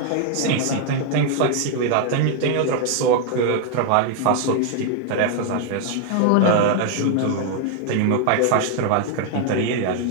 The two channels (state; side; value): different; both; correlation 0.00